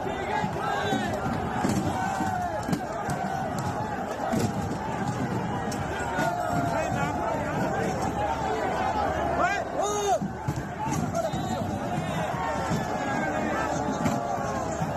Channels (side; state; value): both; identical; correlation 1.00